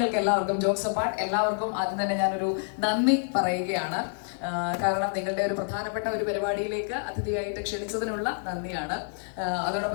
എല്ലാവർക്കും jokes apart എല്ലാവർക്കും ആദ്യം തന്നെ ഞാനൊരു നന്ദി പറയുകയാണ്. കാരണം നിങ്ങളുടെ ഒരു പ്രധാനപ്പെട്ട ഒരു പരിപാടിയിലേക്ക് അതിഥിയായിട്ട് ക്ഷണിച്ചതിനുള്ള നന്ദിയാണ്.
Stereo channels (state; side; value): silent; right; 59 dB below the other